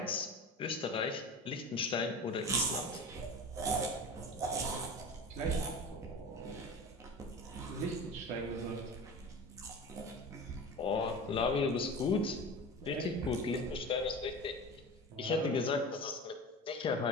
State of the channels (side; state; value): both; normal; correlation 0.32